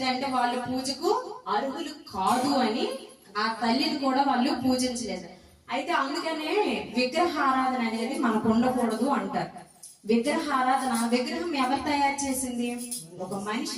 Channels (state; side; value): identical; both; correlation 1.00